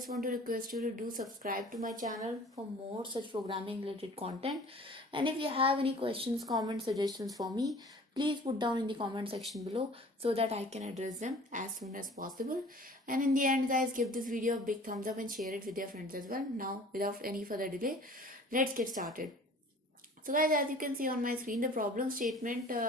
want to request you to do subscribe to my channel for more such programming related content. And if you have any questions, comments, suggestions for me, please put down in the comment section below so that I can address them as soon as possible. And in the end guys, give this video a big thumbs up and share it with your friends as well. Now without any further delay, let's get started. So guys, as you can see on my screen, the problem statement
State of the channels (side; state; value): both; normal; correlation 0.47